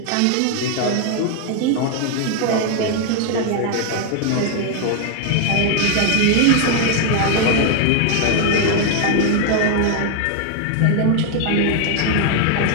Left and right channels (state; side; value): different; both; correlation 0.00